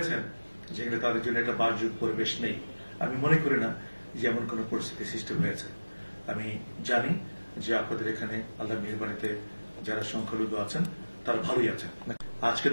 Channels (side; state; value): both; inverted; correlation -1.00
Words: যেখানে তাদের জন্য একটা বাসযোগ্য পরিবেশ নেই। আমি মনে করি না যে এমন কোন পরিস্থিতি সৃষ্টি হয়েছে। আমি জানি যে আপনাদের এখানে আল্লাহ মেহেরবানিতে যারা সংখ্যালঘু আছেন তারা ভালোই আছেন। আজকে